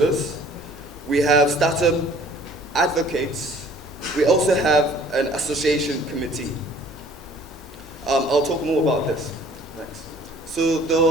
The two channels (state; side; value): normal; both; correlation 0.54